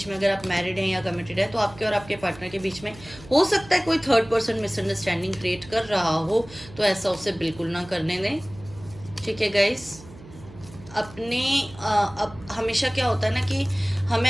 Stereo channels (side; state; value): right; noise; hum, 19 dB below the sound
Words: में, अगर आप मैरिड हैं या कमिटेड है, तो आपके और आपके पार्टनर के बीच में हो सकता है कोई थर्ड पर्सन मिसअंडरस्टैंडिंग क्रिएट कर रहा हो, तो ऐसा उसे बिल्कुल ना करने दें, ठीक है गाइस। अपने अब हमेशा क्या होता है ना कि हमें